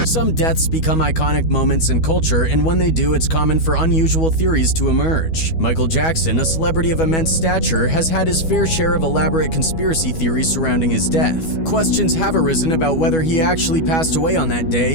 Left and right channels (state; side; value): late; right; 12 ms